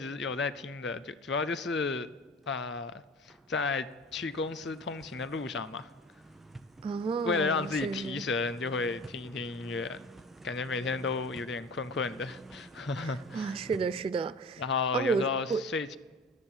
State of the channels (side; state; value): both; normal; correlation 0.39